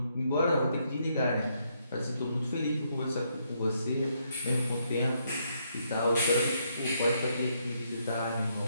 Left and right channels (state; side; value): inverted; both; correlation -0.75